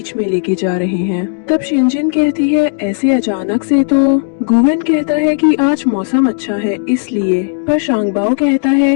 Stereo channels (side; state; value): right; silent; digital silence